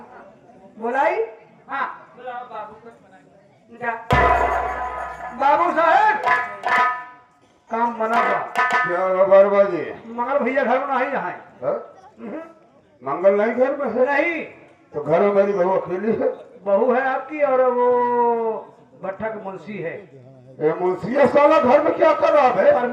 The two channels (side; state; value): both; identical; correlation 1.00